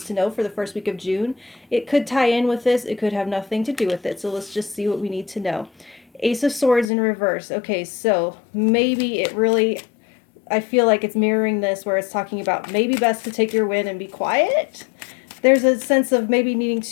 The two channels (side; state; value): right; drops out; at 6.9 s